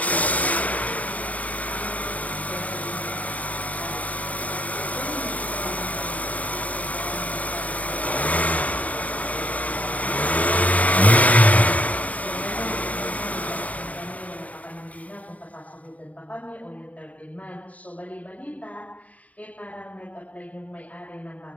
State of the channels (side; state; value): right; late; 0.071 ms